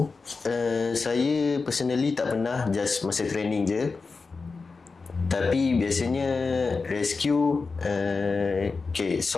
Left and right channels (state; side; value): quieter; right; 4.4 dB